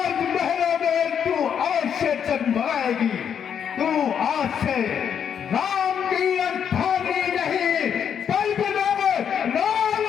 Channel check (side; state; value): right; quieter; 8.1 dB